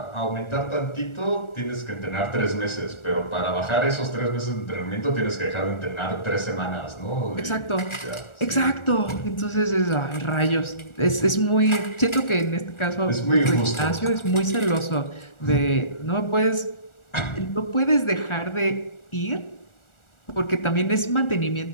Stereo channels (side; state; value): right; late; 1.4 ms